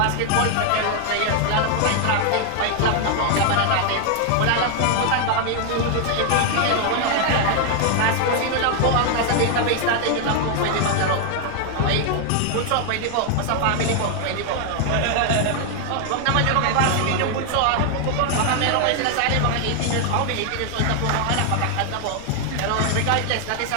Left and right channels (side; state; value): both; different; correlation 0.00